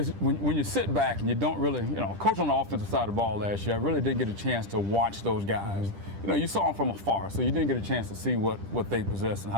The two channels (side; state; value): left; late; 10 ms